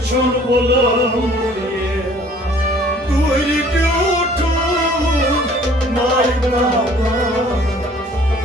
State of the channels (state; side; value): normal; both; correlation 0.54